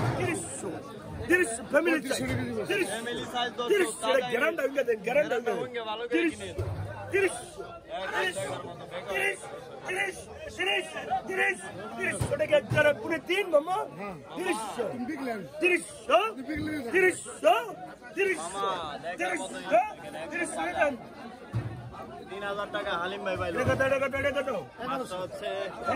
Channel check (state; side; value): identical; both; correlation 1.00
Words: 30 ফ্যামিলি সাইজ 30 গ্যারান্টি হয়ে গেছে গ্যারান্টি ভালো করে কিনে 30 টাকা যারা পুরো 3 মামা 3000 টাকা হালিম ভাই ভাই মাছটা হচ্ছে